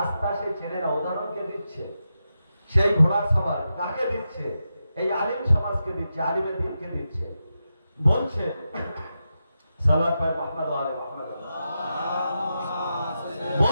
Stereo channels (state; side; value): inverted; both; correlation -0.88